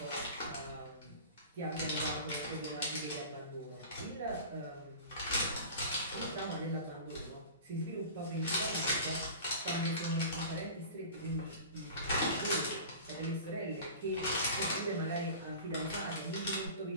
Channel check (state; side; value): inverted; both; correlation -0.38